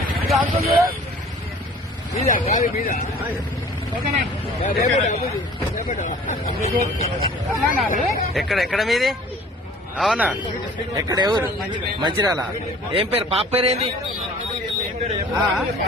అంకుల్ ఎక్కడ మీది? అవునా? ఎక్కడ ఎవరు? మంచిర్యాల. ఏం పేరు? పాప పేరేంది?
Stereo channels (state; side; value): normal; both; correlation 0.49